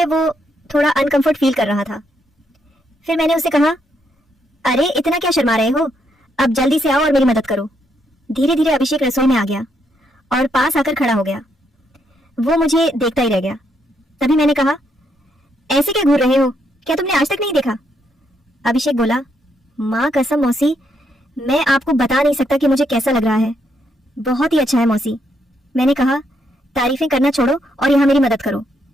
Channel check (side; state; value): both; normal; correlation 0.76